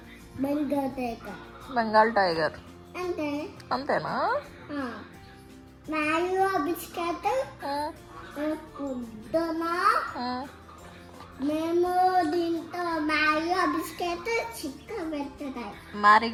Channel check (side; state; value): both; identical; correlation 1.00